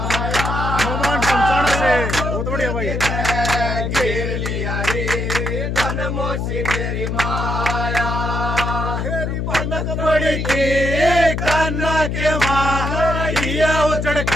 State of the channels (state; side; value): noise; left; hum, 2 dB below the sound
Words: हनुमान पंचानन से बहुत बढ़िया भाई घेर लिया रे धन मौसी तेरी माया हेरी बनक पड़ी थी कान्ना के माँ ये उजड़